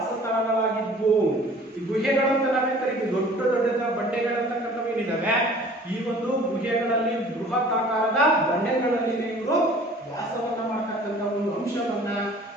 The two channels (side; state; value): both; normal; correlation 0.49